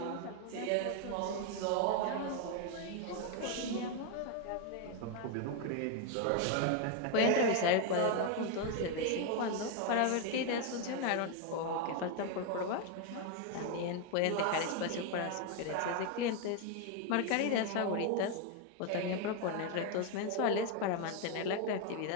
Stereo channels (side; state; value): both; different; correlation 0.01